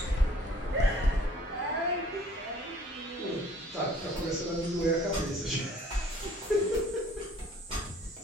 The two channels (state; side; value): normal; both; correlation 0.54